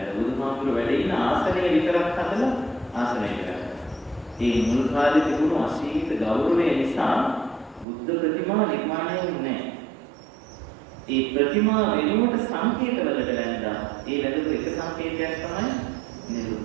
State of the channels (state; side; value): drops out; left; at 7.9 s